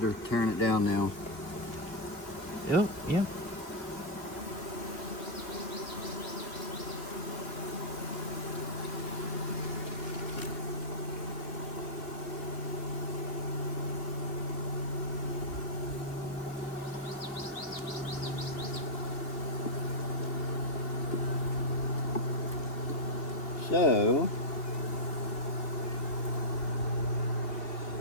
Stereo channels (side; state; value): right; late; 2.9 ms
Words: tearing it down now. Yep, yep. So,